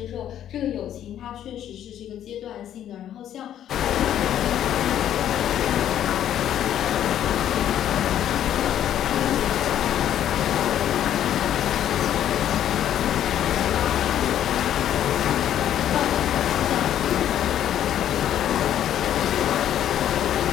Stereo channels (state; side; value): quieter; right; 10.8 dB